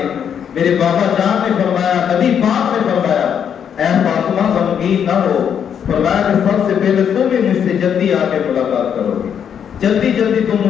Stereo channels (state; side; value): quieter; right; 8.2 dB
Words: میرے بابا جان نے فرمایا، نبی پاک نے فرمایا اے فاطمہ غمگین نہ ہو، فرمایا کہ سب سے پہلے تم ہی مجھ سے جلدی آ کے ملاقات کرو گی، جلدی جلدی تم